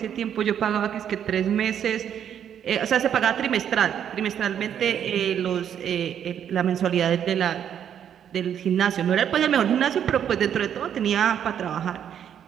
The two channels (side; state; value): left; quieter; 9.2 dB